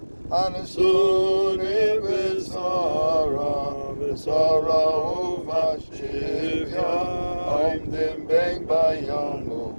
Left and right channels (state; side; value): inverted; both; correlation -1.00